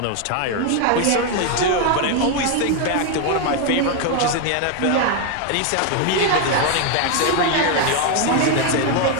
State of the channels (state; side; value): different; both; correlation 0.01